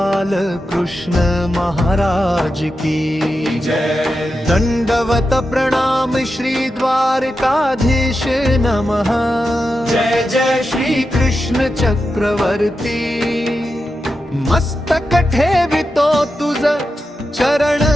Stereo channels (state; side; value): normal; both; correlation 0.89